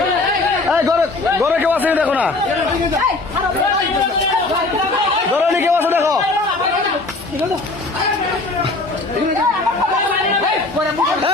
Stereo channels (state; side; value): quieter; right; 3.2 dB